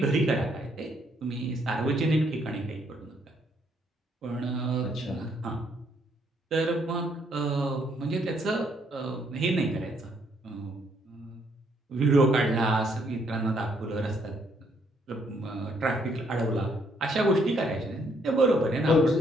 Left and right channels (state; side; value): normal; both; correlation 0.70